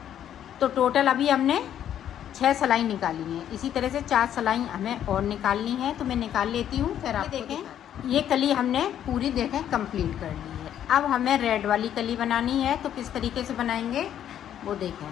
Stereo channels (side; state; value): right; quieter; 10.3 dB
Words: तो टोटल अभी हमने 6 सिलाई निकाली है। इसी तरह से 4 सिलाई हमें और निकालनी है। तो मैं निकाल लेती हूँ फिर आप देखें। ये कली हमने पूरी देखें कंप्लीट कर ली है। अब हमें रेड वाली कली बनानी है। तो किस तरीके से बनाएंगे वो देखें।